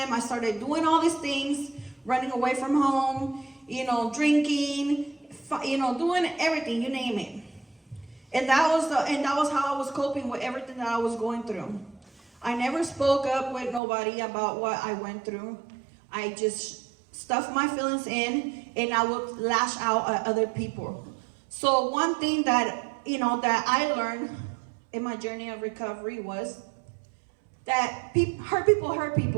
I started doing all these things. Running away from home, you know, drinking, you know, doing everything, you name it. And that was how I was coping with everything that I was going through. I never spoke up with nobody about what I went through. I just stuffed my feelings in, and I would lash out at other people. So one thing that, you know, that I learned in my journey of recovery was that hurt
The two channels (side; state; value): left; drops out; at 13.8 s